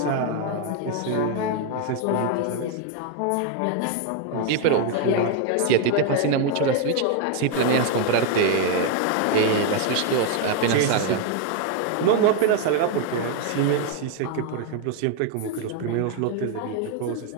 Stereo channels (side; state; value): both; different; correlation 0.01